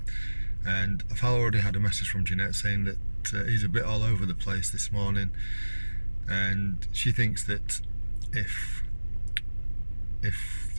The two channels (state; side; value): inverted; both; correlation -1.00